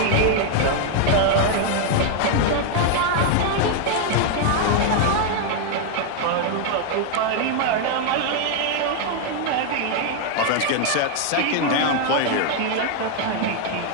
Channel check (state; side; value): different; both; correlation 0.00